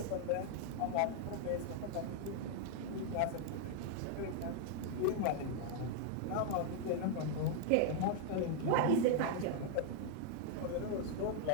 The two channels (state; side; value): different; both; correlation 0.00